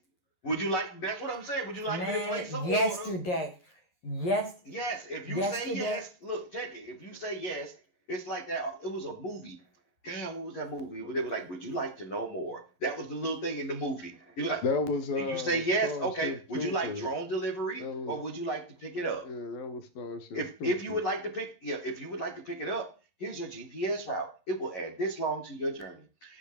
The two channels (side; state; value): right; late; 11 ms